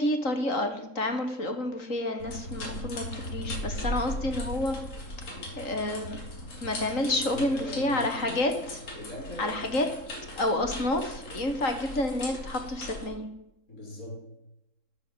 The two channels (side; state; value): right; late; 3.7 ms